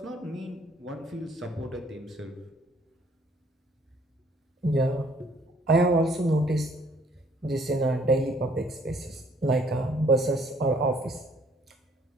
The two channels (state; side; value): normal; both; correlation 0.62